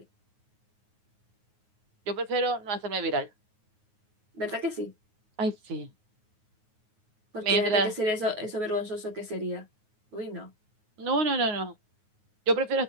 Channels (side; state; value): left; late; 9.5 ms